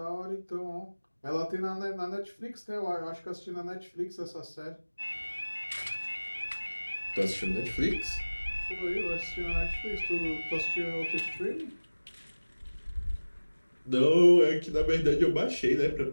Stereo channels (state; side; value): inverted; both; correlation -1.00